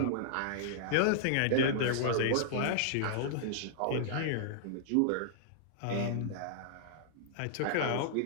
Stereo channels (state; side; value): different; both; correlation -0.01